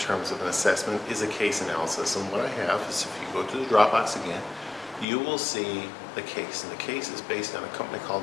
of an assessment is a case analysis, and what I have is, if you go to the Dropbox again, you will see the case, and the case is based on a company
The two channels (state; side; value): drops out; right; at 5.1 s